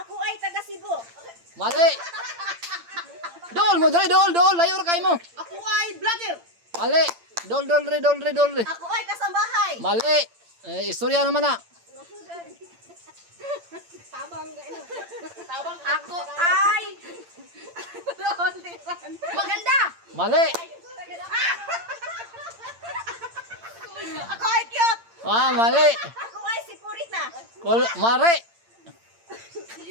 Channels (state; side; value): late; left; 8.8 ms